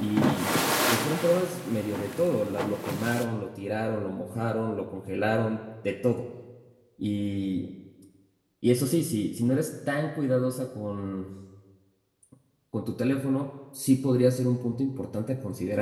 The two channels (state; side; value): identical; both; correlation 1.00